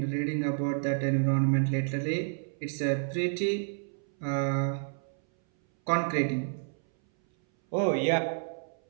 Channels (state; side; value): silent; left; 58 dB below the other